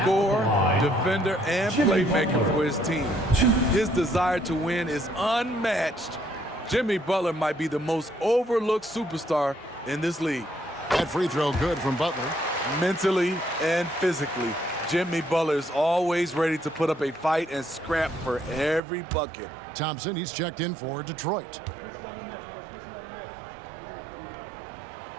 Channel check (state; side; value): drops out; left; at 18.8 s